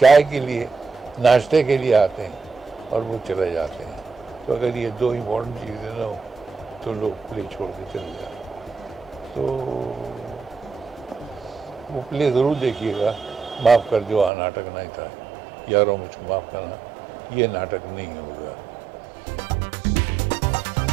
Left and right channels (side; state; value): left; drops out; at 14.3 s